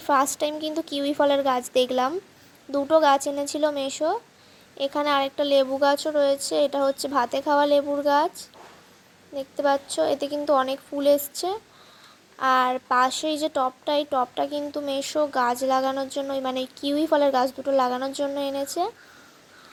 ফার্স্ট টাইম কিন্তু কিউই ফলের গাছ দেখলাম। দুটো গাছ এনেছিল মেশো। এখানে আরেকটা লেবু গাছও রয়েছে, এটা হচ্ছে ভাতে খাওয়া লেবুর গাছ। দেখতে পাচ্ছ, এতে কিন্তু অনেক ফুল এসছে। আর পাশেই যে টবটা, এই টবটা কিন্তু মেশো গাছ লাগানোর জন্য, মানে কিউই ফলের গাছ দুটো লাগানোর জন্য এনেছে।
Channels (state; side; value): identical; both; correlation 1.00